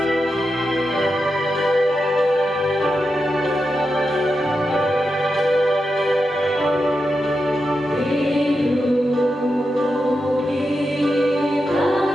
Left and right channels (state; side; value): normal; both; correlation 0.88